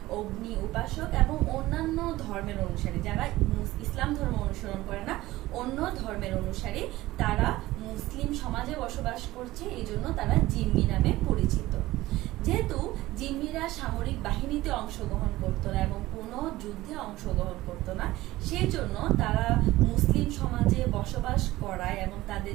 অগ্নি উপাসক এবং অন্যান্য ধর্মের অনুসারী, যারা ইসলাম ধর্ম অনুসরণ করে না, অন্য ধর্মের অনুসারী, তারা মুসলিম সমাজে বসবাস করছে, এই জন্য তারা জিম্মি নামে পরিচিত। যেহেতু জিম্মিরা সামরিক বাহিনীতে অংশগ্রহণ করতো না এবং কোনো যুদ্ধে অংশগ্রহণ করতো না, সেই জন্য তারা মুসলিম সমাজে বসবাস করায় এবং তাদের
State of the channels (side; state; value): left; quieter; 17.4 dB